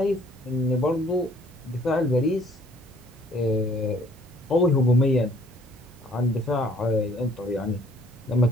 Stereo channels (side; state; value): both; normal; correlation 0.59